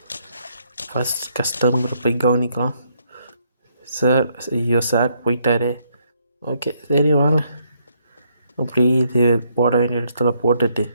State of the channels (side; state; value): both; inverted; correlation -0.72